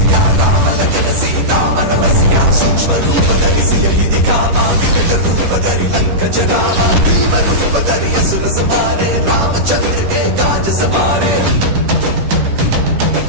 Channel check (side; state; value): left; late; 10 ms